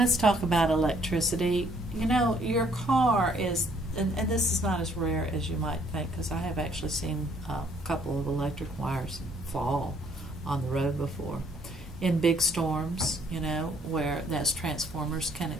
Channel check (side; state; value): both; normal; correlation 0.64